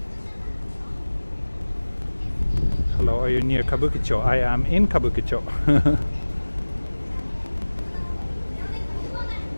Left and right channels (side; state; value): both; inverted; correlation -1.00